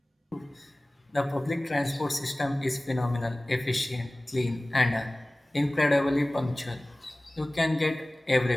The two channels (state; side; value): normal; both; correlation 0.98